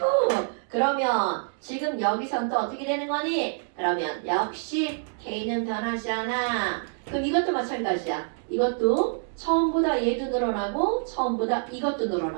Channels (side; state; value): left; silent; digital silence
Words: 그러면 지금 여기선 또 어떻게 되는 거니? 그러면 역시 K는 변하지 않아. 그럼 이것도 마찬가지야. 이것도 처음보다 얘도 늘어나고 처음보다 이것도